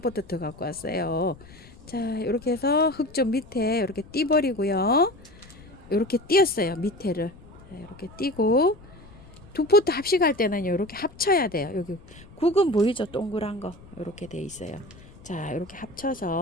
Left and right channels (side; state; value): left; noise; rumble, 21 dB below the sound